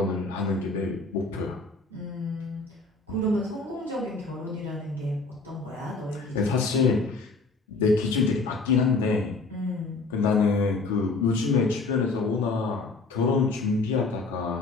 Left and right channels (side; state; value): right; quieter; 3.7 dB